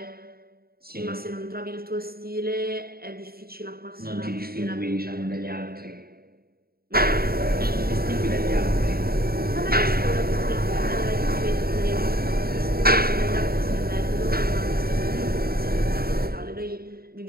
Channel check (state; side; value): late; left; 0.44 ms